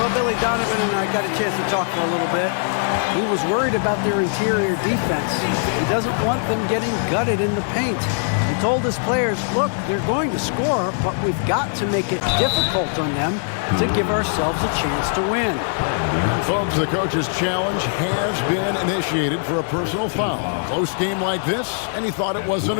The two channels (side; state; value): right; silent; 60 dB below the other